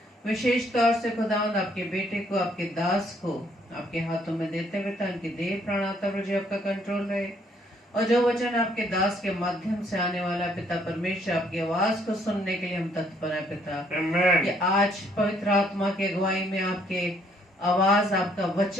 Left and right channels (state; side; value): normal; both; correlation 0.66